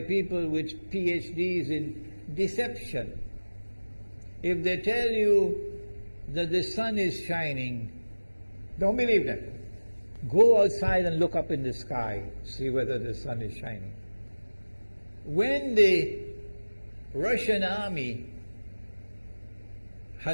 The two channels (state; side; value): inverted; both; correlation -1.00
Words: people with PhDs in deception. If they tell you that the sun is shining, don't believe them. Go outside and look up in the sky, see whether the sun is shining. When the Russian army